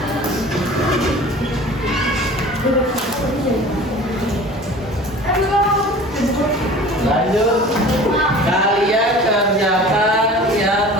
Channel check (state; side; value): normal; both; correlation 0.42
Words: Lanjut, kalian kerjakan yang